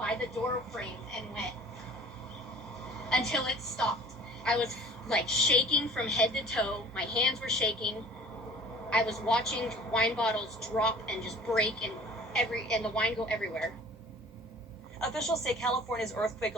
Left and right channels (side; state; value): both; normal; correlation 0.48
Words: the door frame and went until it stopped. I was like shaking from head to toe. My hands were shaking. I was watching wine bottles drop and just break and the wine go everywhere. Officials say California's earthquake